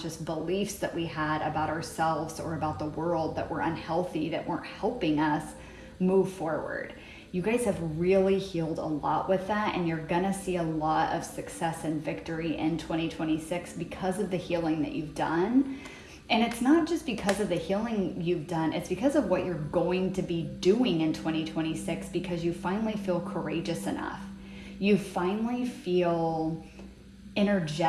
beliefs that we had about ourselves or about the world that were unhealthy, that weren't helping us move forward. You guys have really healed a lot with that, and you're gonna see a lot of success and victory in 2026 because of the healing that you've done. And it's not just because of the healing you've done, it's because of what you're going to be doing in 2026, because you finally feel courageous enough. You finally feel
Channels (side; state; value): both; identical; correlation 1.00